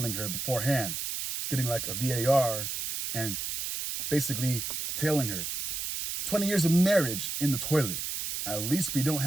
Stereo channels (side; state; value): right; noise; hiss, 3 dB below the sound